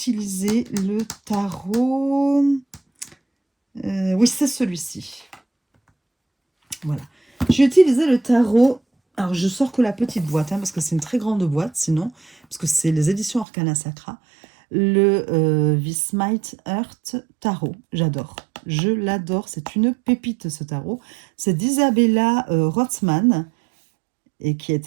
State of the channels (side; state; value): left; drops out; at 13.5 s